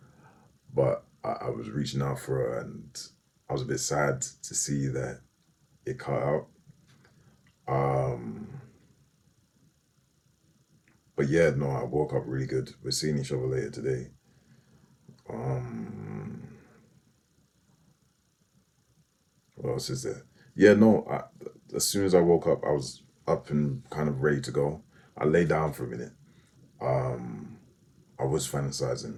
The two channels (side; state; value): both; identical; correlation 1.00